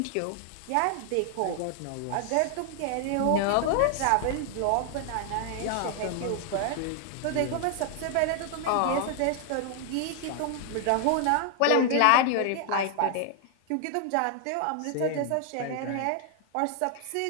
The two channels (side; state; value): both; different; correlation 0.00